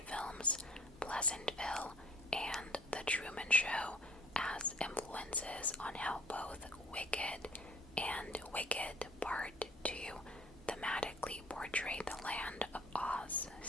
films Pleasantville and The Truman Show as influences on how both Wicked and Wicked Part 2 thematically portray the Land of Oz,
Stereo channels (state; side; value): normal; both; correlation 0.53